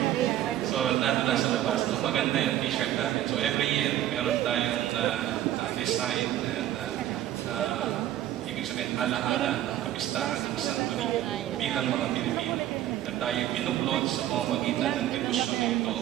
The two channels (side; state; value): left; quieter; 12.9 dB